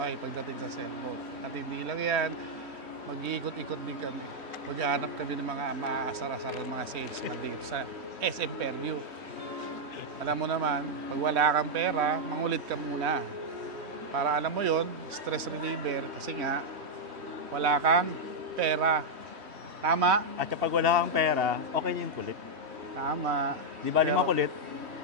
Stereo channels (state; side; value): late; left; 3.1 ms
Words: pagdating sa cellphone. At hindi lang yan, mag-iikot-ikot din kami. Maghahanap kami ng mga maaasar-asar ng mga salesman dito sa SM Fairview. Alam mo naman, pag wala kang pera, mangulit ka muna. Para alam mo yon, stress reliever kasi nga, wala kang pera. Tama? At kapag wala kang pera, okay yung kulit. Tama. Di ba lima kulit?